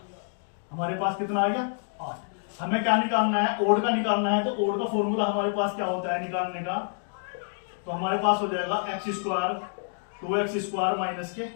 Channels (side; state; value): right; silent; digital silence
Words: हमारे पास कितना आ गया, 8। हमें क्या निकालना है, ओड का निकालना है। तो ओड का फॉर्मूला हमारे पास क्या होता है निकालने का, तो हमारे पास हो जाएगा x square 2x square minus के